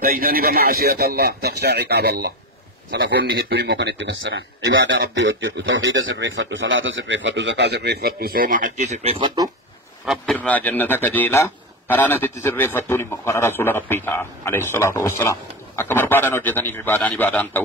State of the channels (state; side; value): normal; both; correlation 0.19